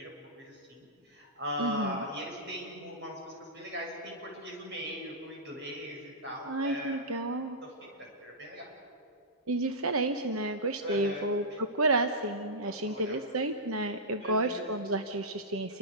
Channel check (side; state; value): both; normal; correlation -0.15